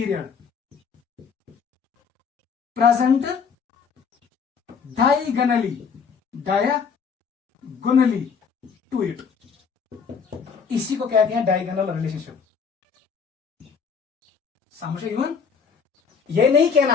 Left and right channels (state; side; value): quieter; right; 6.1 dB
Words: present diagonally to it. इसी को कहते हैं डायगोनल रिलेशनशिप. समझे इवन? ये नहीं